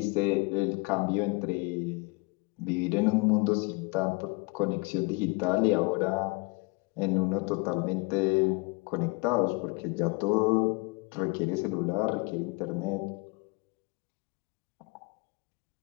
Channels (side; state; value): right; quieter; 28.4 dB